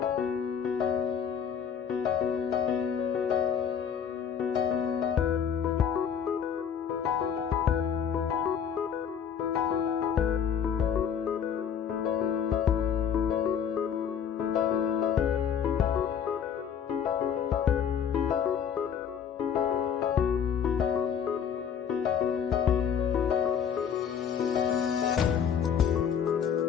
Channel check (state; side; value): quieter; right; 7.8 dB